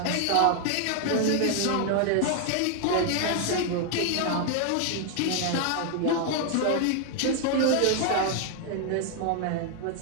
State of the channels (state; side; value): different; both; correlation 0.00